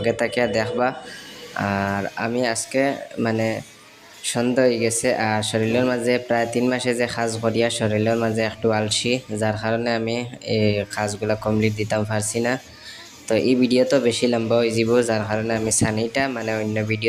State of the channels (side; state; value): both; identical; correlation 1.00